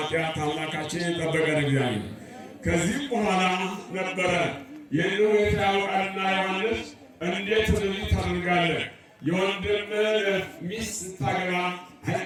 አምላካችን የጠበቀን እግዚአብሔር። ከዚህም በኋላ ነበረ ይህን ሁኔታ ያውቃልና ዮሐንስ እንዴት እንደዚህ ታደርጋለህ? የወንድምህን ሚስት ስታገባ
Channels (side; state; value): both; identical; correlation 1.00